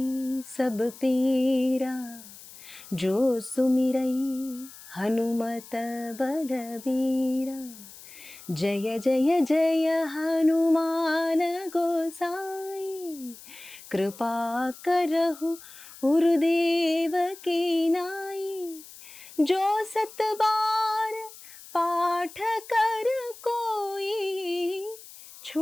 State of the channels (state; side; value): noise; left; hiss, 18 dB below the sound